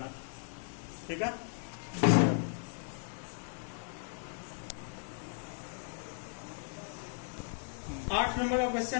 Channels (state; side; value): silent; right; 54 dB below the other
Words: ठीक है। 8 नंबर का